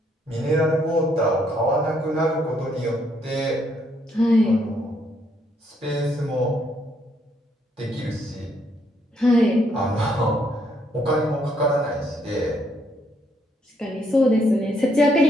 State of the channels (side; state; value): both; normal; correlation 0.72